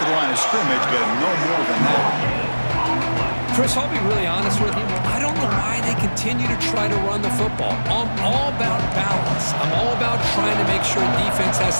the line of scrimmage, but no more than that. Chris, I'll be really honest with you. I don't know why they continue to try to run the football. I'm all about balance. I'm all about trying to make sure defense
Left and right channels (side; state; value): both; inverted; correlation -1.00